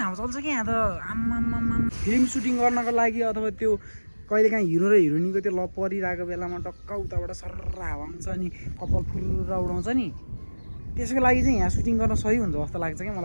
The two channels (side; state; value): both; inverted; correlation -1.00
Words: चल्छ के यहाँ त। आम्मामाम फिल्म सुटिङ गर्नको लागि अथवा त्यो कहिलेकाहीँ हिरो र हिरोइनीको त्यो लभ परिरहेको बेलामा टक्क उताबाट सर्र हावा आउँछ अनि कपाल फुर्र उडाउँछ नि। त्यसको लागि चाहिँ यहाँ सुटिङ गर्न सही हुन्छ जस्तो लाग्छ के